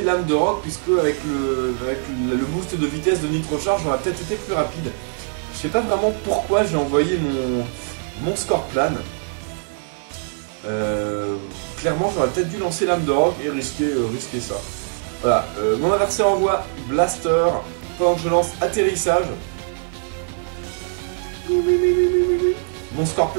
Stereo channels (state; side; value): silent; left; digital silence